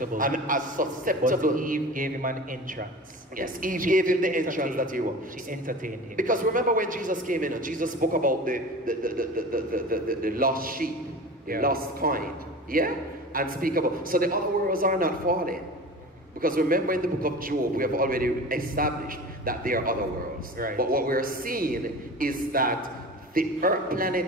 And as susceptible. But Eve gave him an entrance. Yes, Eve gave him the entrance that he wanted. She entertained him. Because remember when Jesus came in, Jesus spoke about the lost sheep, lost coin, and speak about. So the other worlds are not falling. Because remember in the book of Job, we have already established that there are other worlds. Right. But what we're seeing is that the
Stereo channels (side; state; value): both; normal; correlation 0.35